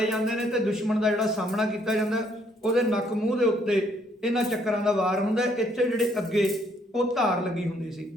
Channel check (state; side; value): normal; both; correlation 0.68